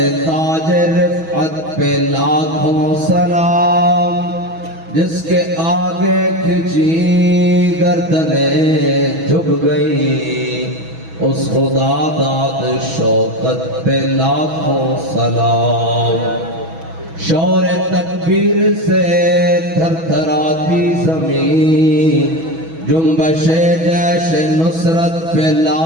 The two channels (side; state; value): left; late; 6.2 ms